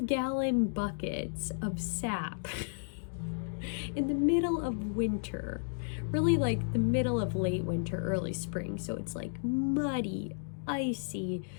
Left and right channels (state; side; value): silent; right; digital silence